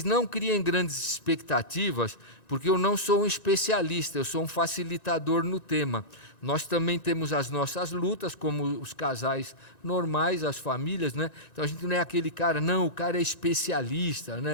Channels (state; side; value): late; right; 2.6 ms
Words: não criem grandes expectativas, porque eu não sou um especialista, eu sou um facilitador no tema. Nós também temos as nossas lutas, como os casais normais, as famílias, né? Então a gente não é aquele cara, não, o cara é especialista,